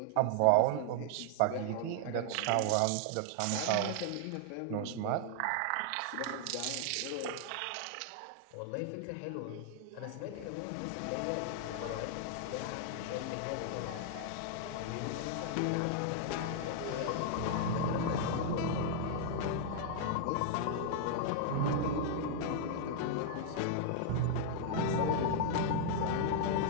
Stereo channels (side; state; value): both; different; correlation -0.01